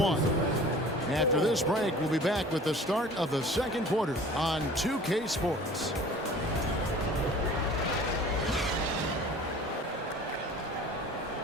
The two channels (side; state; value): both; normal; correlation 0.45